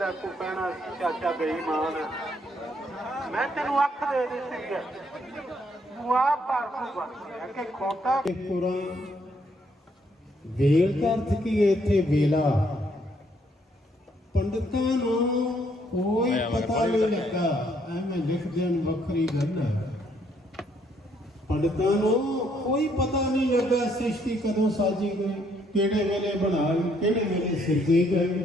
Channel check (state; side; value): normal; both; correlation 0.70